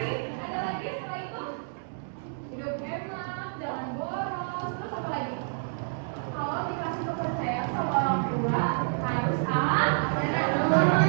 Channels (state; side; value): silent; left; digital silence